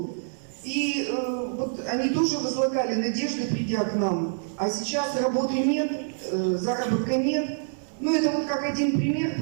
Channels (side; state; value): left; silent; 61 dB below the other